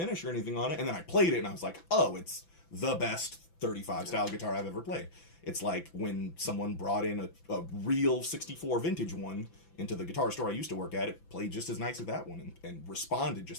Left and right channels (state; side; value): late; right; 5.9 ms